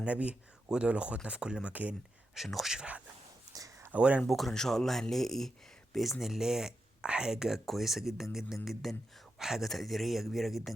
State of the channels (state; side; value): normal; both; correlation 0.87